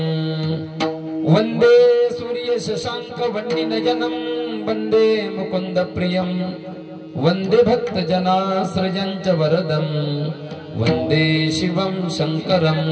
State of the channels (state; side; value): identical; both; correlation 1.00